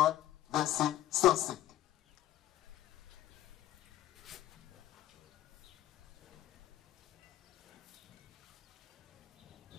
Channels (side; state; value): right; quieter; 13.6 dB